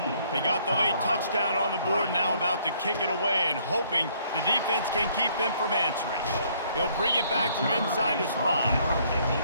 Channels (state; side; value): inverted; both; correlation -0.64